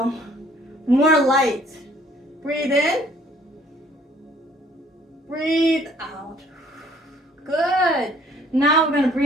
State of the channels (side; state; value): both; normal; correlation 0.60